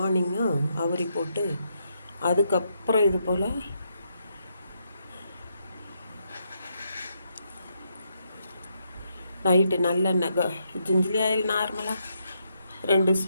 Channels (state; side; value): inverted; both; correlation -0.79